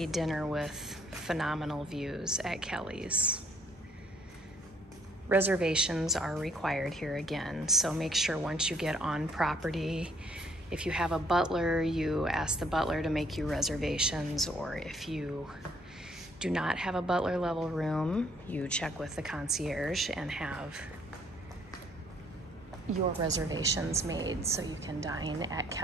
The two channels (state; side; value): normal; both; correlation 0.64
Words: dinner with phenomenal views at Kelly's. Reservations are required here again, so make sure once you get on property, if you have a butler, you ask the butler to make you reservations, or if you do not have a butler level room, you check with the concierge and have your reservations made so you can dine at